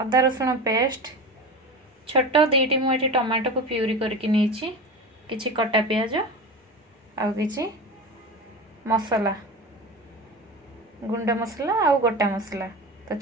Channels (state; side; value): normal; both; correlation 0.28